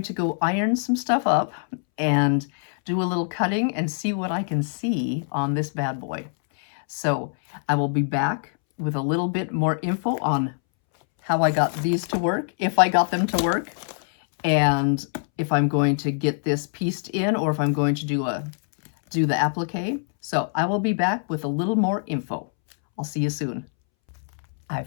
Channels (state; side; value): silent; right; 63 dB below the other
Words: to go iron some stuff up and do a little cutting and see what I can see on this bad boy. So I will be back with a little bit more info on how I got these to work, if I got them to work, and if I'm going to get this pieced in or if I'm going to do the applique. So I will be back with a little more info. I'll see you soon. I